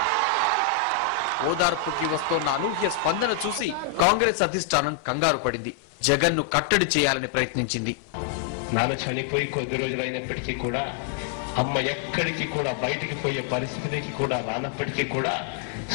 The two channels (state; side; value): drops out; right; at 4.2 s